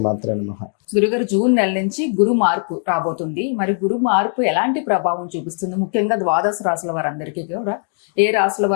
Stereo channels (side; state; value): right; silent; 59 dB below the other